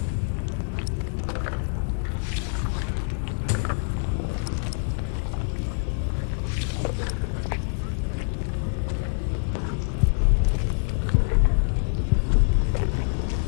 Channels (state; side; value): silent; right; digital silence